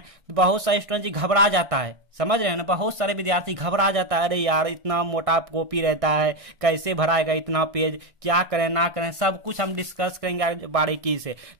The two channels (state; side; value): late; left; 1.6 ms